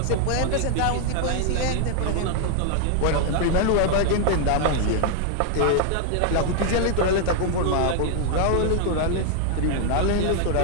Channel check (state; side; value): different; both; correlation 0.00